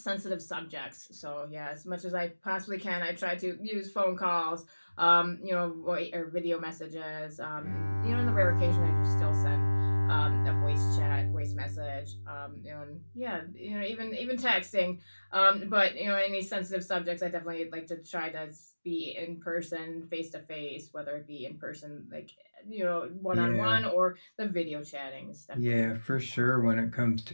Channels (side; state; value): both; inverted; correlation -1.00